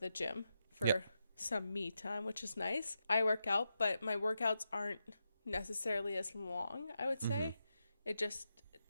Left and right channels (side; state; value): both; inverted; correlation -0.86